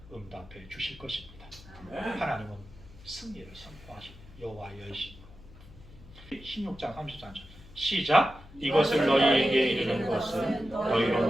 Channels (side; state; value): left; noise; hum, 20 dB below the sound